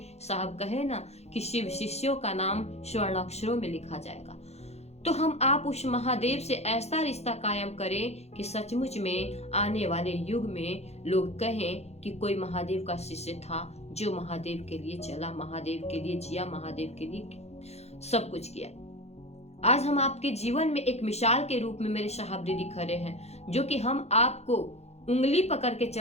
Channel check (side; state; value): right; late; 0.31 ms